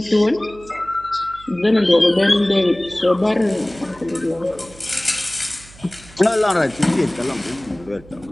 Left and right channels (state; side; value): noise; right; hum, 22 dB below the sound